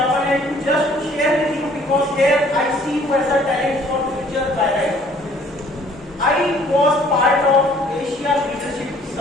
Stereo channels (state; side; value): normal; both; correlation 0.57